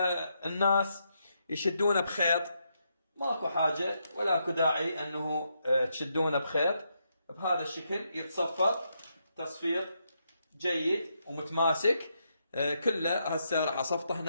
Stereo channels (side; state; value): both; inverted; correlation -0.80